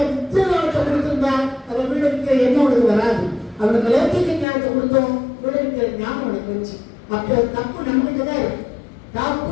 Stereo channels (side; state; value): right; drops out; at 4.5 s